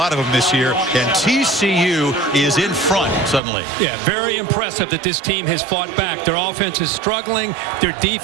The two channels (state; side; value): drops out; left; at 3.4 s